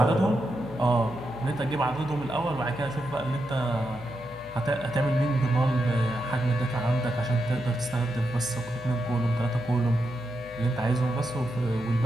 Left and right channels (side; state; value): left; noise; hum, 18 dB below the sound